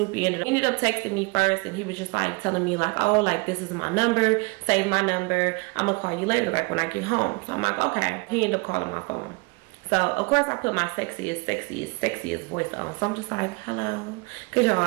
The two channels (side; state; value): left; quieter; 30.1 dB